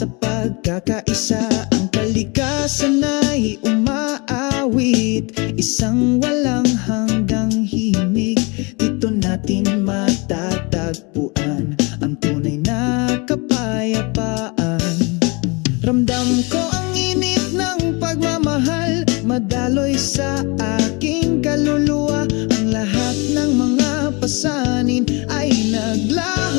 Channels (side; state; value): right; quieter; 28.9 dB